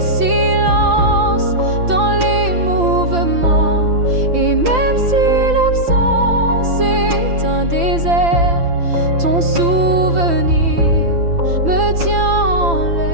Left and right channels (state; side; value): late; left; 5.9 ms